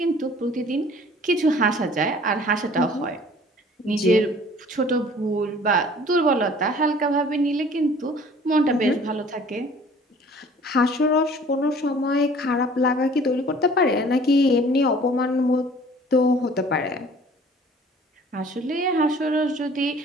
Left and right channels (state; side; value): normal; both; correlation 0.51